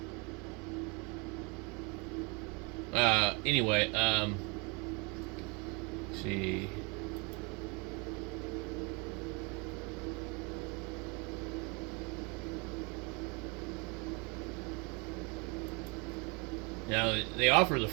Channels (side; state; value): left; quieter; 30.5 dB